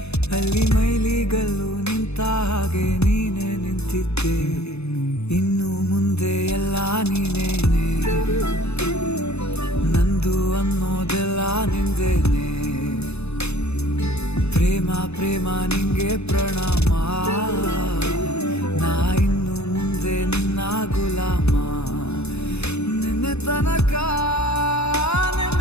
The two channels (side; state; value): right; late; 0.80 ms